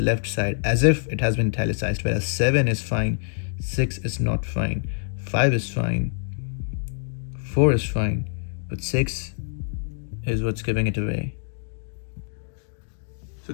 left side as if it has been italicized, whereas 7 is fine. 6 is not fine. 5 is fine. 4 is fine. But 6 is what's giving it away. So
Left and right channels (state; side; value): silent; right; digital silence